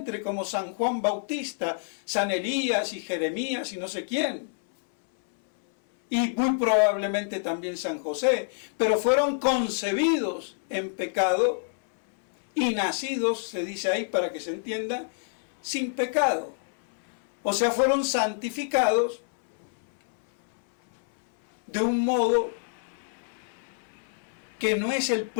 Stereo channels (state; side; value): silent; right; 60 dB below the other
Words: como San Juan Bautista, San Elías y Jeremías y no sé quién. Y muy probablemente también San José, pero fueron concebidos en pecado y nacidos, se dice ahí para que se entienda, sin pecado. O sea, fueron santificados de un modo que no es el